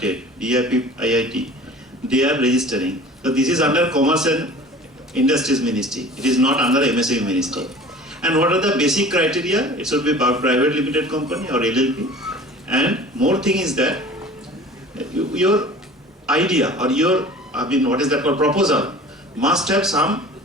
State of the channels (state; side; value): normal; both; correlation 0.43